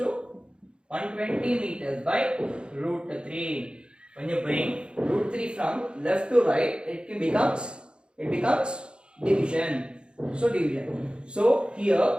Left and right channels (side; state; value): left; late; 0.054 ms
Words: 120 meters by root 3. When you bring root 3 from left to right, it becomes division. So division. So here